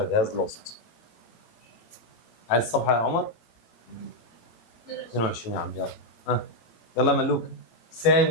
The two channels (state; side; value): late; right; 18 ms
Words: has lost. عايز الصفحه يا عمر؟ 22 يا عم. يلا يلا ملوك.